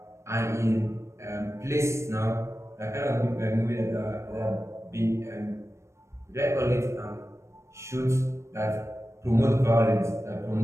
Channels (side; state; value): left; late; 0.14 ms